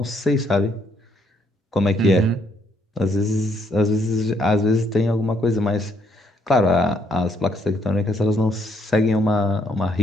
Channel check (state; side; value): normal; both; correlation 0.71